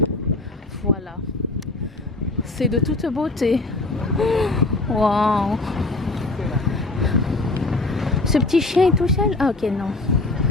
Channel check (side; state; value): right; quieter; 3.1 dB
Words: Voilà. C'est de toute beauté. Waouh. Ce petit chien est tout seul. Ah ok, non.